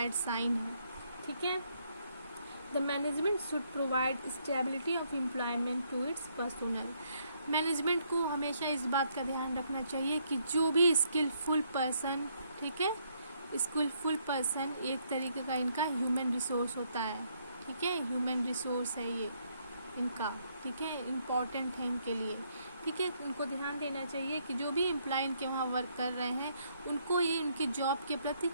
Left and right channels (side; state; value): both; inverted; correlation -0.72